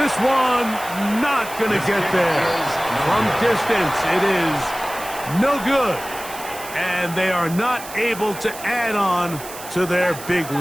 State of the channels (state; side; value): noise; right; hiss, 13 dB below the sound